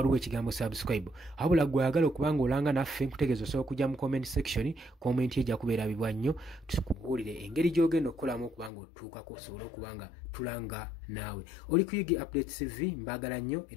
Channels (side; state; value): right; drops out; at 8.7 s